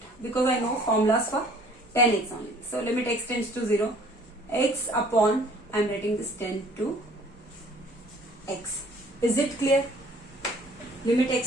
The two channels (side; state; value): both; normal; correlation 0.55